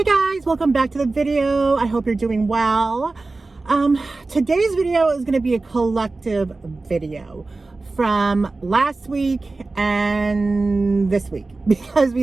guys, welcome back to the video. I hope you're doing well. Today's video is going to be a collective video from last week and this week because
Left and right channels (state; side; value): quieter; left; 3.5 dB